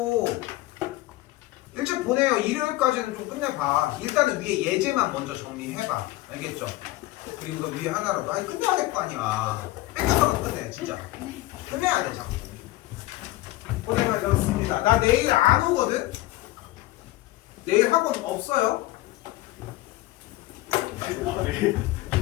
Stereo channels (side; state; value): right; quieter; 18.0 dB